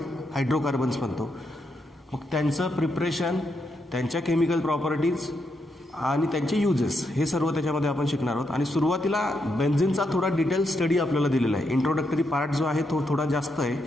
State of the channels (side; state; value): both; normal; correlation 0.81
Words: हायड्रोकार्बन्स म्हणतो. मग त्यांचं प्रिपरेशन, त्यांच्या केमिकल प्रॉपर्टीज आणि त्यांचे युजेस, हे सर्व त्याच्यामध्ये आपण शिकणार आहोत. आणि सुरुवातीला बेन्झिनचा थोडा डिटेल स्टडी आपल्याला दिलेला आहे. इंट्रोडक्टरी पार्ट जो आहे तो थोडा जास्त आहे.